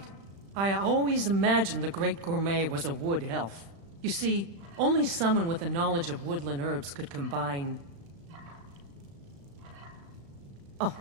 I always imagined the great gourmet was a wood elf. You see, only someone with a knowledge of woodland herbs could combine... Oh,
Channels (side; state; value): left; late; 36 ms